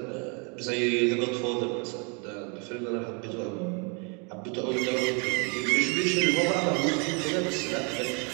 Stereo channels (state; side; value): quieter; left; 34.8 dB